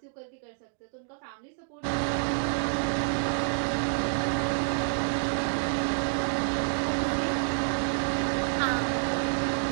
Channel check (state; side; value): silent; left; digital silence